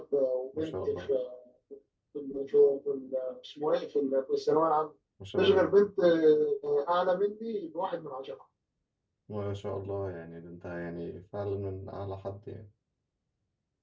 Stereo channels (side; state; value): both; identical; correlation 1.00